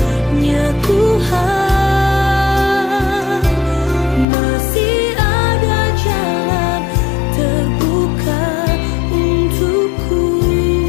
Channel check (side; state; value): right; drops out; at 4.2 s